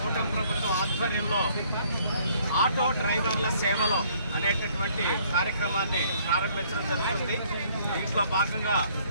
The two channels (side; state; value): both; inverted; correlation -0.62